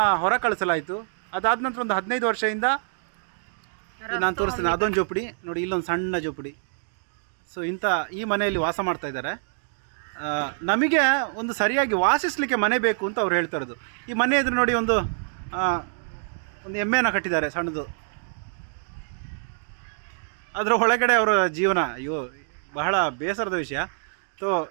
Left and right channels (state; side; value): silent; left; digital silence